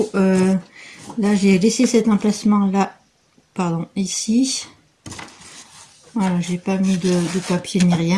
là, j'ai laissé cet emplacement là, pardon, ici. Voilà, j'ai pas mis de papier ni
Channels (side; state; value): both; identical; correlation 1.00